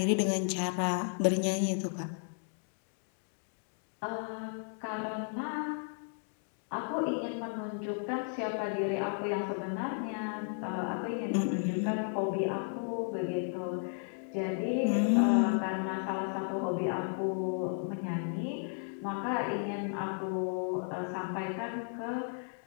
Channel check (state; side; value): silent; right; 55 dB below the other